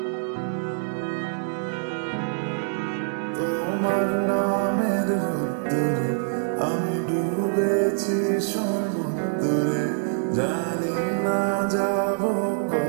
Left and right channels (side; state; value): left; silent; digital silence